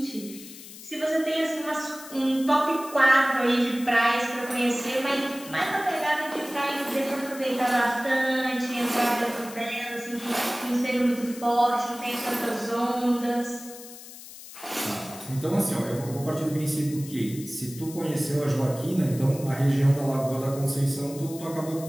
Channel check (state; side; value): noise; left; hiss, 15 dB below the sound